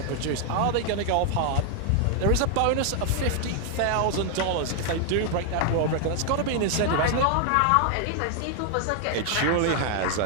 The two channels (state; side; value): different; both; correlation 0.00